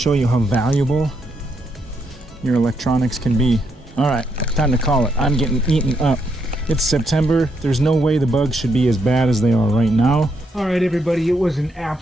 you how valuable your electronics can be. All right, time to call it. I'm getting eaten up. It's September. There's no way the bugs should be as bad as they are right now. All right, everybody, it was a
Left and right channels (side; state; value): both; normal; correlation 0.77